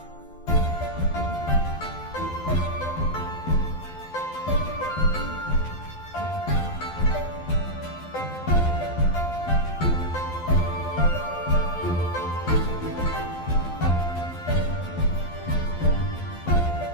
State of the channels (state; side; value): late; right; 12 ms